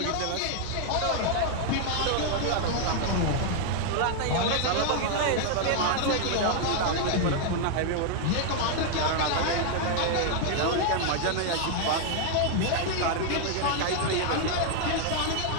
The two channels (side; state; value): both; different; correlation 0.00